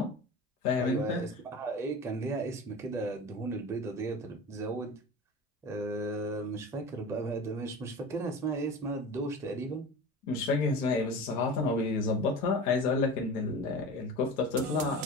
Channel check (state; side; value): normal; both; correlation 0.33